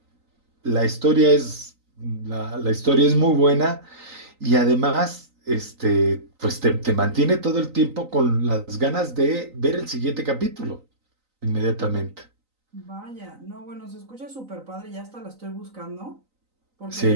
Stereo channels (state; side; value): late; left; 3.9 ms